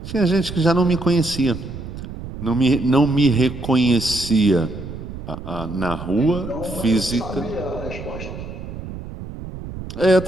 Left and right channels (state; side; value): noise; right; rumble, 10 dB below the sound